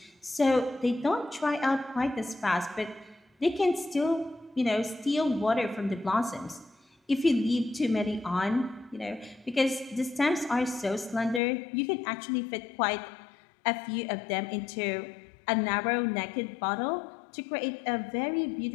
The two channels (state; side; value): drops out; right; at 11.4 s